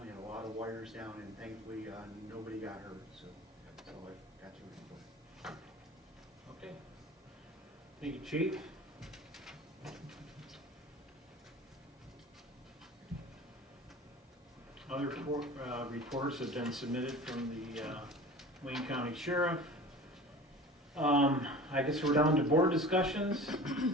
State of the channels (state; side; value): normal; both; correlation 0.39